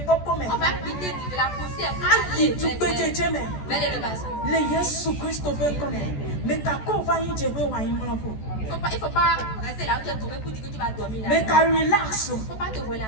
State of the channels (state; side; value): late; right; 14 ms